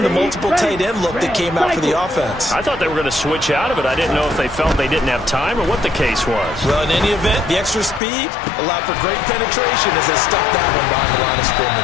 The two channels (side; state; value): right; drops out; at 8.0 s